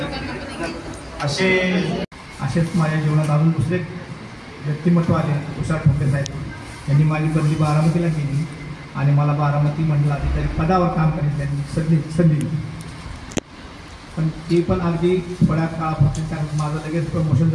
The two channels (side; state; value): both; identical; correlation 1.00